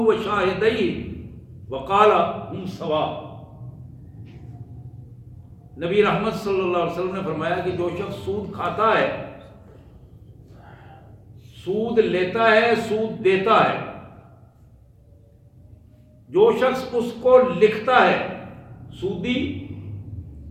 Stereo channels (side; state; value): both; identical; correlation 1.00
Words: وقال ہم سوا. نبی رحمت صلی اللہ علیہ وسلم نے فرمایا کہ جو شخص سود کھاتا ہے، سود لیتا ہے، سود دیتا ہے، جو شخص اس کو لکھتا ہے، سودی